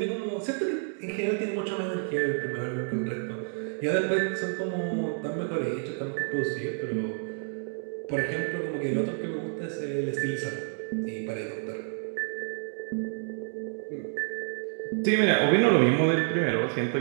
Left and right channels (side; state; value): left; silent; digital silence